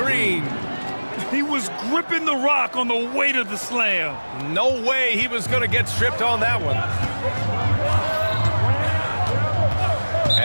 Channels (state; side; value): inverted; both; correlation -1.00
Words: He was gripping the rock on the weight of the slam. No way he was going to get stripped on that one.